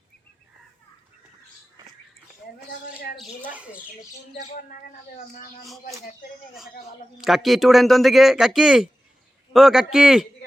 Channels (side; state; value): both; normal; correlation 0.95